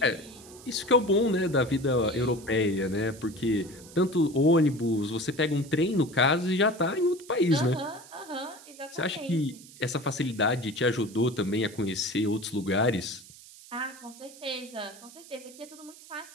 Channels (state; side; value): noise; right; hiss, 20 dB below the sound